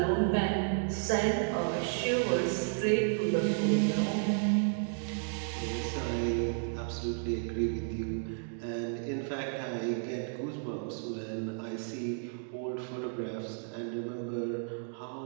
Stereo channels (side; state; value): left; silent; digital silence